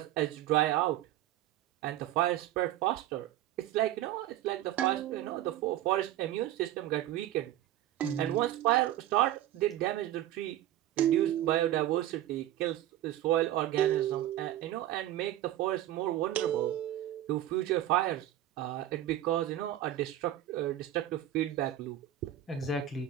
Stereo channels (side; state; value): left; quieter; 12.9 dB